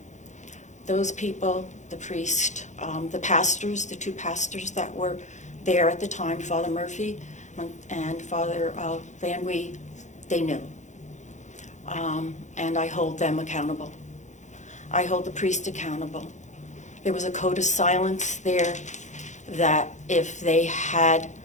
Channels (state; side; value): late; right; 0.35 ms